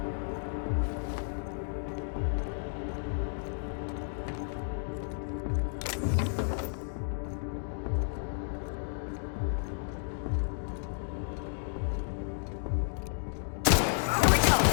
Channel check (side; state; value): right; silent; digital silence